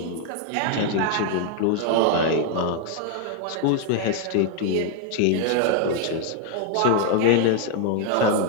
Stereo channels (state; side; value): different; both; correlation 0.00